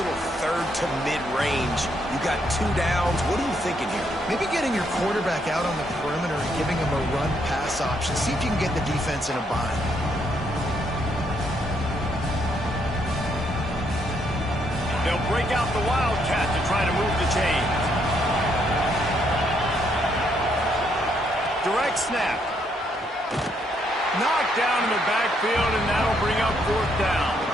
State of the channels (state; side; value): normal; both; correlation 0.74